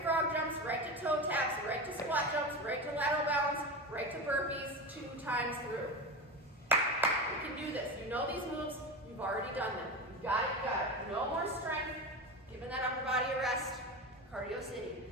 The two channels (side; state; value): both; normal; correlation 0.23